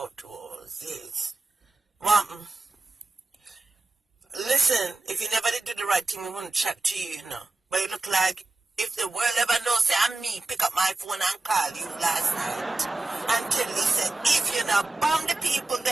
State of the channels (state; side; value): quieter; left; 3.2 dB